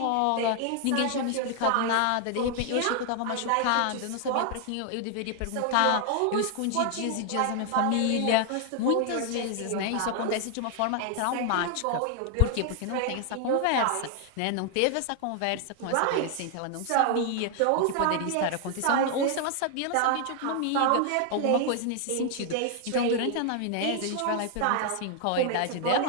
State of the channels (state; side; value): different; both; correlation 0.00